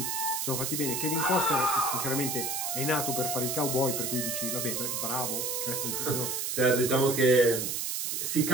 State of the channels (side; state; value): right; noise; hiss, 1 dB below the sound